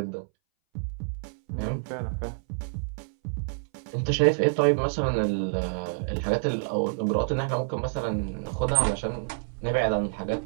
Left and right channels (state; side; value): silent; left; 60 dB below the other